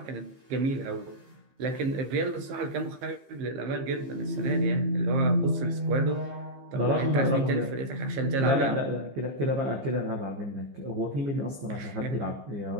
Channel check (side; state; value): left; late; 15 ms